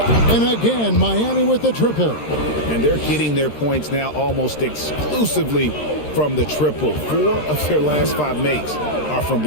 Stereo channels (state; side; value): late; right; 13 ms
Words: And again, Miami with the triple. And they're getting their points now almost exclusively from the triple. 4 of their last 5 makes are from